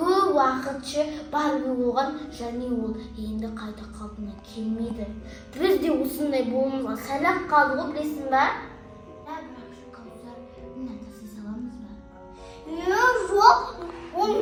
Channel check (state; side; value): identical; both; correlation 1.00